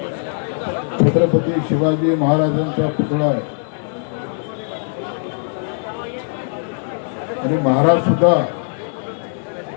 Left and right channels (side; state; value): right; silent; digital silence